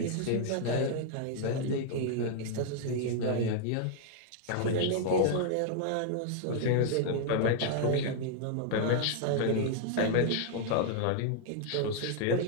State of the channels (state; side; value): different; both; correlation 0.00